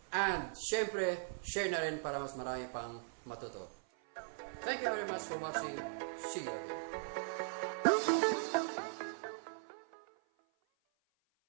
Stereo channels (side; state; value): left; silent; 51 dB below the other